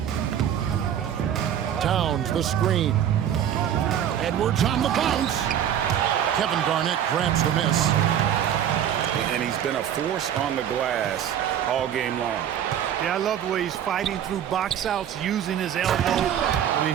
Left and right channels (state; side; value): quieter; left; 9.8 dB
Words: Towns, the screen. Edwards on the bounce. Kevin Garnett grabs the miss. And he's been a force on the glass all game long. Yeah, I love the way he's fighting through box outs, using his elbow. I mean,